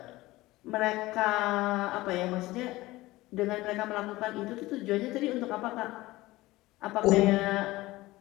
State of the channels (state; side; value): quieter; right; 18.8 dB